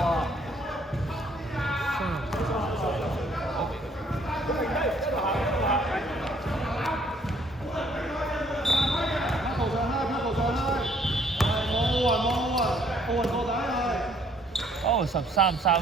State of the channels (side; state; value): both; normal; correlation 0.63